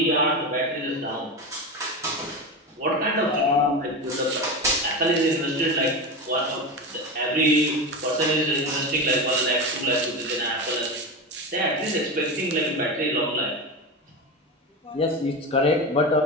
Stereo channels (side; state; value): both; normal; correlation 0.21